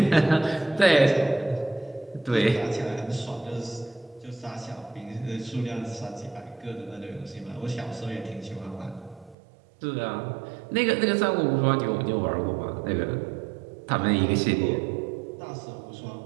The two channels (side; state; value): left; drops out; at 9.3 s